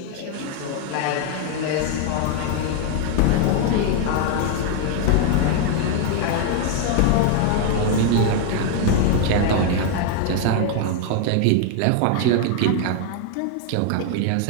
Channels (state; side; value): different; both; correlation 0.00